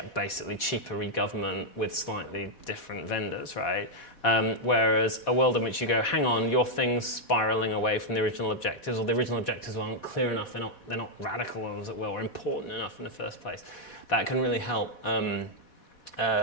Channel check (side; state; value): right; late; 4.1 ms